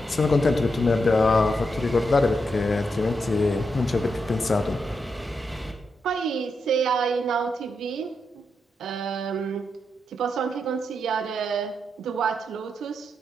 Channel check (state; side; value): normal; both; correlation 0.83